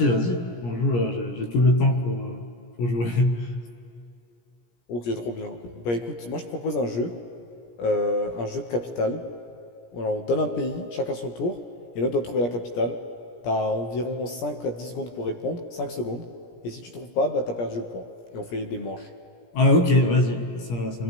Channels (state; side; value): late; right; 17 ms